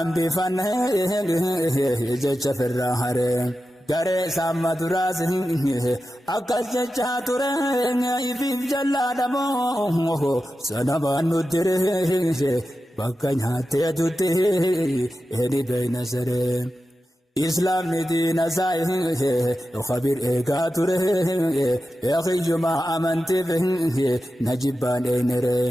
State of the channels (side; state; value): both; normal; correlation 0.92